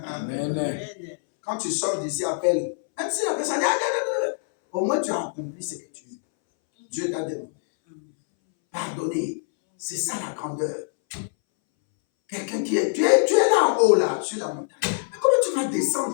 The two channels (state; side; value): silent; right; 62 dB below the other